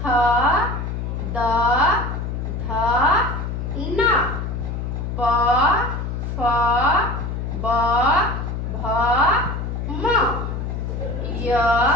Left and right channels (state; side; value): noise; left; hum, 4 dB below the sound